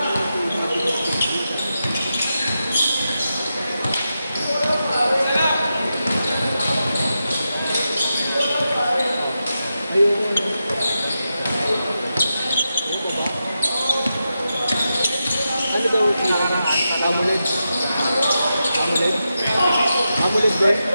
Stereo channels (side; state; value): both; inverted; correlation -0.88